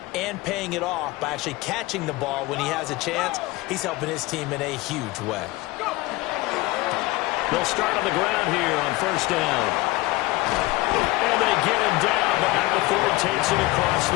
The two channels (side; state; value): right; quieter; 19.9 dB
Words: and paying it off by actually catching the ball when he has a chance, he's helping his team in a huge way. They'll start on the ground here on first down. And they get him down, but not before he takes it across